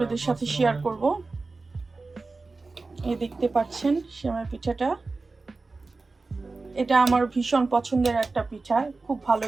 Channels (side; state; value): left; quieter; 3.7 dB